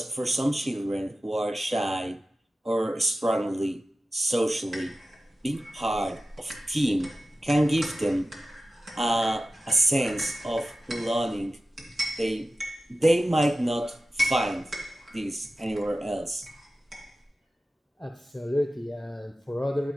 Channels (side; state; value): both; normal; correlation 0.94